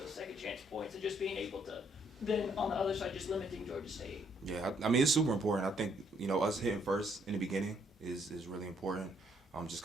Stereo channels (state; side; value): normal; both; correlation 0.69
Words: those second chance points and just being able to, then on the other side, just limiting Georgia State? Yeah, I mean, it's super important. I think, you know, us hitting first in the beginning is really important. Just